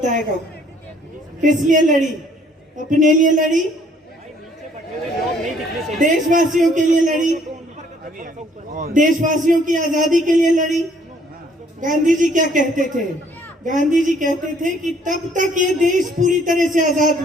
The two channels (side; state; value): both; normal; correlation 0.62